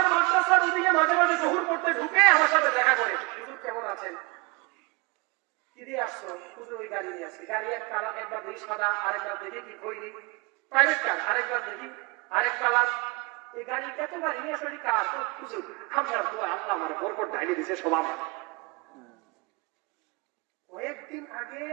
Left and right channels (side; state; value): left; quieter; 26.9 dB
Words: মাদ্রাসার ওদিকে মাঝে মাঝে জহুর পড়তে ঢুকে আমার সাথে দেখা করে, হুজুর কেমন আছেন, কি দিয়ে আসছো? হুজুর ওই গাড়ি নিয়ে আসছি। গাড়ি এক কালার, একবার দেখি সাদা, আরেকবার দেখি কি খৈরি, প্রাইভেট কার, আরেকবার দেখি আরেক কালার। এই গাড়ি এত গাড়ি নিয়ে আসলে কার? হুজুর আমরা আল্লাহ আমার বরকত ঢাইলে দিছে সব। কয়েকদিন আগে